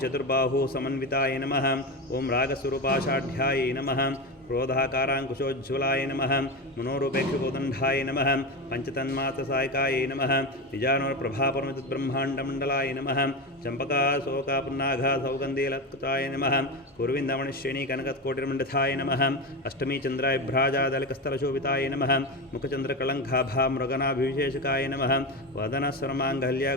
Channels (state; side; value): normal; both; correlation 0.19